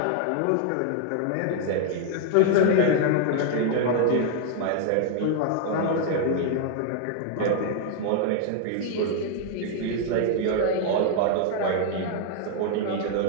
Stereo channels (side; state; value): both; different; correlation 0.00